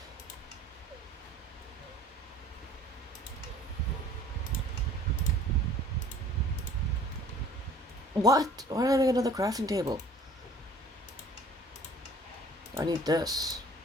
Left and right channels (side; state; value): both; normal; correlation 0.50